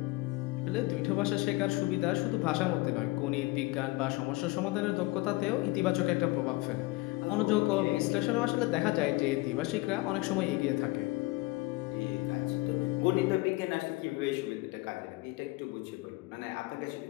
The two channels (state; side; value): quieter; right; 21.5 dB